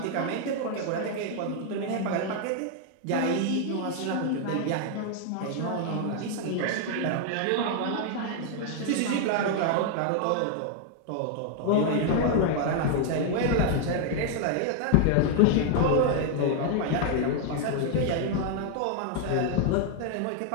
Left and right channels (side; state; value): both; different; correlation 0.00